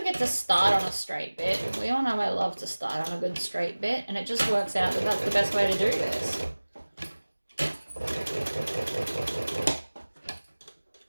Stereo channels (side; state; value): both; inverted; correlation -1.00